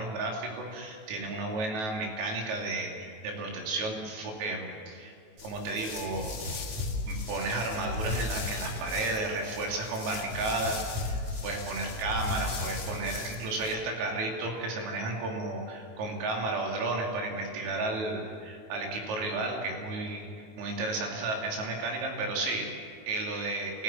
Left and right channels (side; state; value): left; late; 19 ms